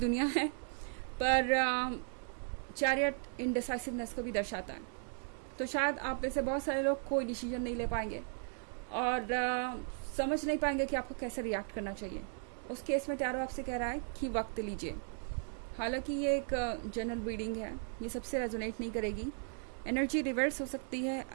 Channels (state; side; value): silent; left; 53 dB below the other